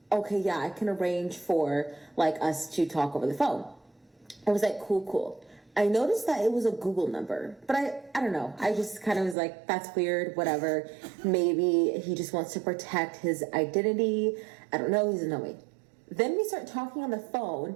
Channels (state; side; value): drops out; left; at 9.3 s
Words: yeah, I can arrange for like us to talk over the phone. I was like, cool. I noticed that it was a Google number, but I don't know. I just kind of was like, that's weird, whatever. Maybe he just wants to protect his identity. I don't know. He doesn't know me. Then we start talking on the